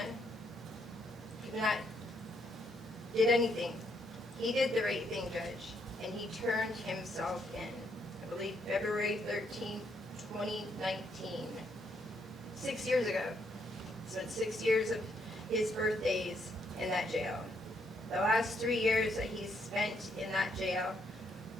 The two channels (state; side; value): normal; both; correlation 0.74